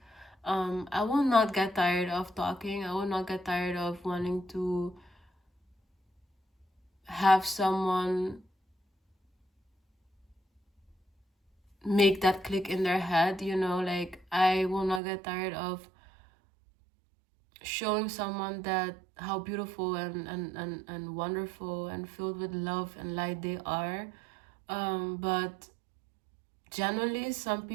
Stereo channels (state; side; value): drops out; left; at 15.0 s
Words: I will not get tired of talking. I will not get tired of wanting to have someone make that click in their head, you know. Like, I will not get tired of showing someone that how beautiful and wonderful and filled with love and light they are. But generally, some